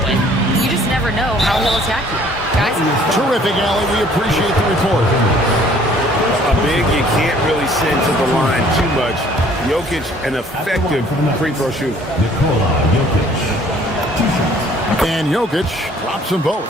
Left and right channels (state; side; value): normal; both; correlation 0.57